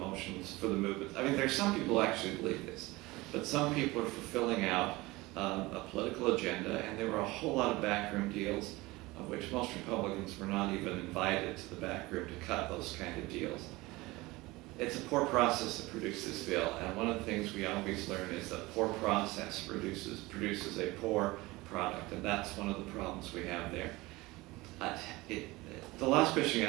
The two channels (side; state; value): left; quieter; 21.2 dB